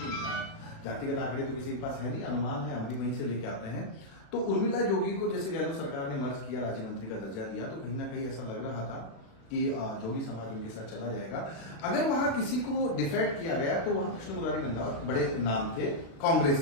जातिगत आंकड़े तो किसी के पास है नहीं, अनुमान है, हम भी वहीं से लेके आते हैं। तो उर्मिला जोगी को जैसे गहलोत सरकार ने मर्ज किया, राज्य मंत्री का दर्जा दिया, तो कहीं ना कहीं ऐसा लग रहा था कि जोगी समाज उनके साथ चला जाएगा। अगर वहां किसी को डिफेक्ट किया गया तो वहां कृष्ण मुरारी रंधावा बड़े नाम थे कांग्रेस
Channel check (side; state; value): right; late; 36 ms